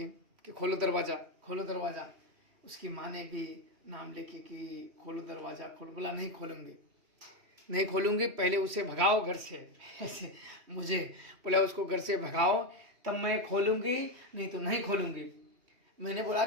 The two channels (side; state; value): left; late; 3.0 ms